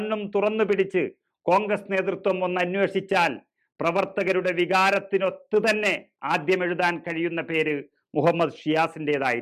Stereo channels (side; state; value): both; identical; correlation 1.00